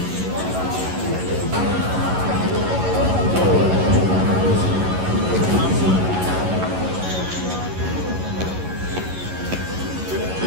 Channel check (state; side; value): late; left; 11 ms